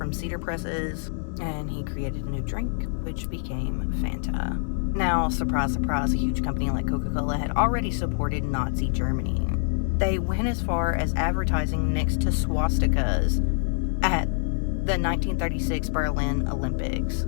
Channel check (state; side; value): silent; right; 61 dB below the other